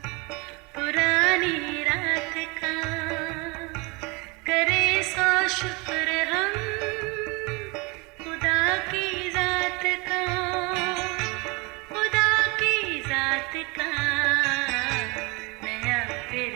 पुरानी रात का, करे सौ शुक्र हम खुदा की जात का, खुदा की जात का, नया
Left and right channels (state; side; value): quieter; left; 27.6 dB